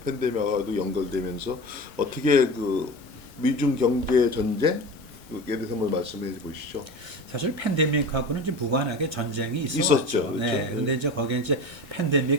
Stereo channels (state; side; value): normal; both; correlation 0.31